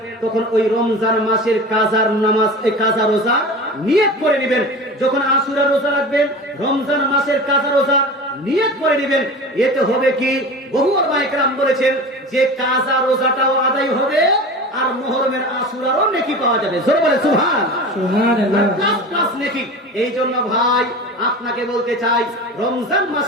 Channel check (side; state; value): both; normal; correlation 0.33